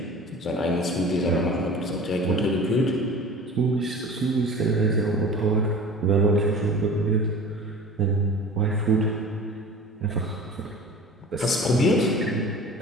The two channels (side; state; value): both; normal; correlation 0.39